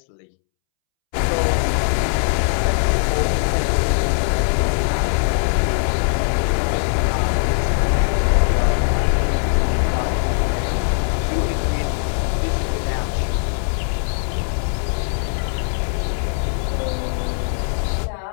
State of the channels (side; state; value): right; silent; 66 dB below the other